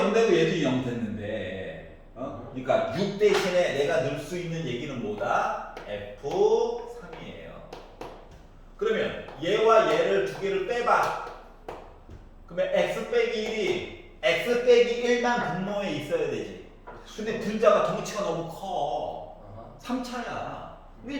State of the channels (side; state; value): both; identical; correlation 1.00